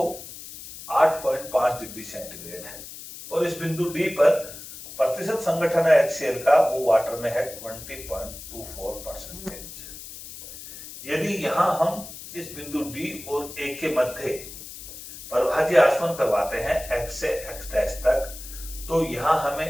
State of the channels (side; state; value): left; noise; hiss, 13 dB below the sound